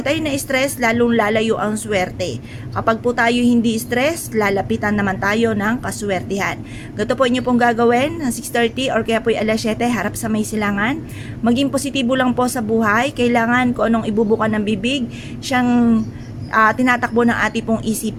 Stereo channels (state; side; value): identical; both; correlation 1.00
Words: tayo na-stress, lalong lalayo ang swerte. Kapag po tayo hindi stress, lalapitan naman tayo ng kaswertihan. Ganito po inyo pong gagawin, 6:30 or kaya po alas 7, harap sa may silangan. Maging positibo lang po sa buhay. Kailangan kung anong ibubukan ng bibig, siyang tinatakbo ng ating pong